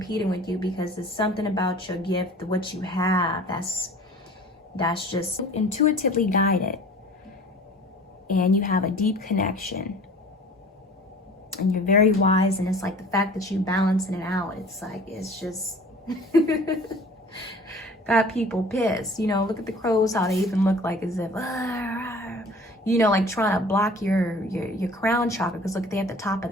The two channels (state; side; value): normal; both; correlation 0.46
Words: with you, because it's something about your gift, what you have, that's just intuitively guided. And you have a deep connection. And you're very wise, and it's like the fact that you balancing it out, it's like, it's just got people pissed. You know, look at the crows, how they even look like as if, you know, like trying to block your crown chakra, because look, they at the top of